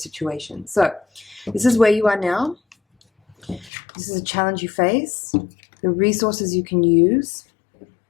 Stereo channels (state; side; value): drops out; right; at 3.7 s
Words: So this is where you are now. This is a challenge you face, the resources you can use,